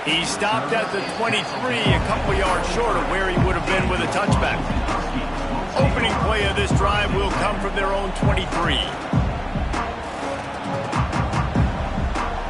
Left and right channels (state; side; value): identical; both; correlation 1.00